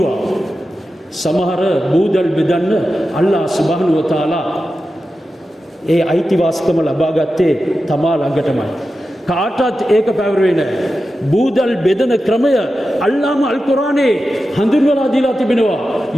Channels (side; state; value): both; normal; correlation 0.92